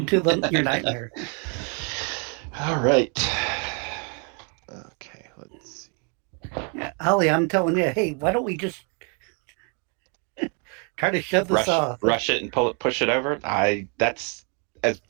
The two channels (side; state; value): left; quieter; 37.4 dB